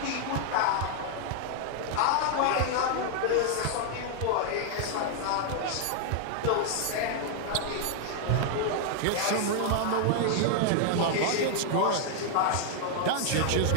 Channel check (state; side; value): different; both; correlation 0.00